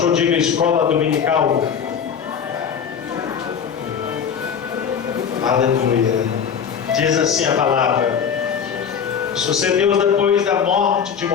diga escola dominical. Aleluia. Diz assim a palavra: sucedeu depois da morte de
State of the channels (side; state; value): right; quieter; 7.3 dB